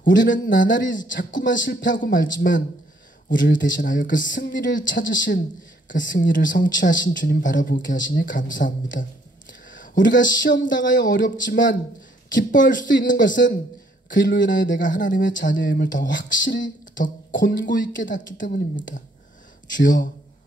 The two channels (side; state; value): both; normal; correlation 0.66